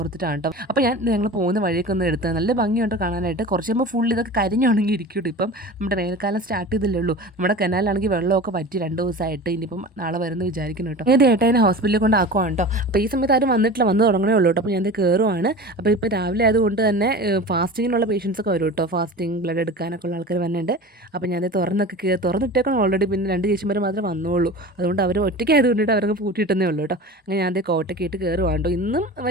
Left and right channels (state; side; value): normal; both; correlation 0.35